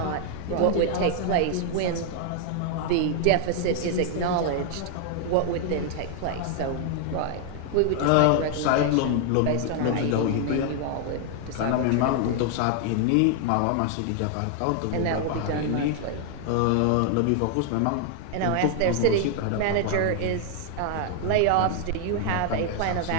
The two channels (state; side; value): different; both; correlation 0.00